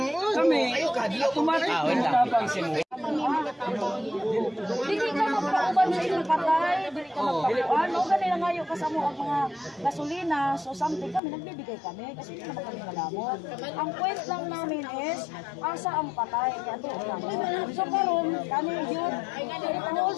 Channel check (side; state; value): right; drops out; at 11.2 s